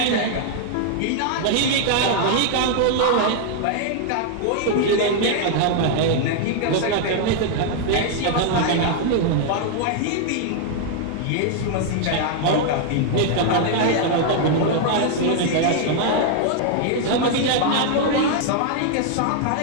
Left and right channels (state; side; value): different; both; correlation 0.00